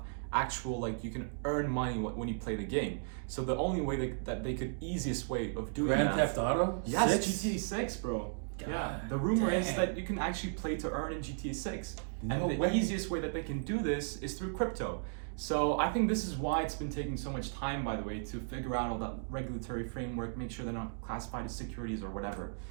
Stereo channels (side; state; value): left; silent; digital silence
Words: actual, like, you can earn money when you play the game. So the only way that they could, easiest way of doing Grand that. Theft Auto? Yes, 6? GTA 6, bro. God Yeah, the rumor is dang. that you can actually play to earn in GTA 6. No And the way. easiest way that they can do this is through crypto. So I think this is why it's been taking so much time, by the way, to figure out all that regulatory framework, make sure they're not classified as securities or whatever.